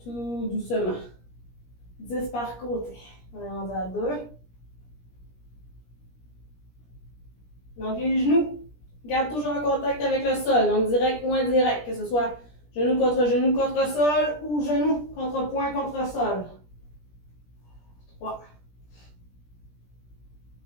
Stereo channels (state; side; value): late; right; 17 ms